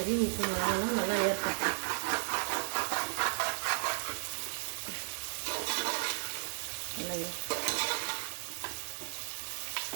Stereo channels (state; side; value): silent; left; digital silence